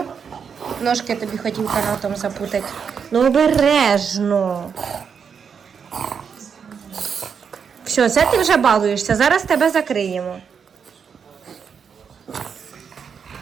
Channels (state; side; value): quieter; left; 6.7 dB